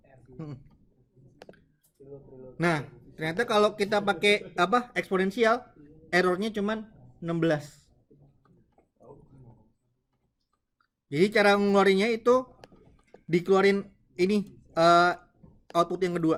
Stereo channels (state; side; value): identical; both; correlation 1.00